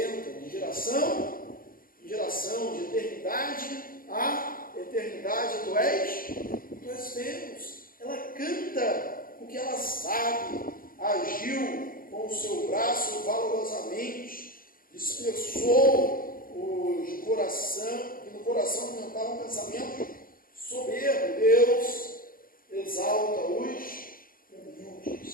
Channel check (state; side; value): late; right; 0.41 ms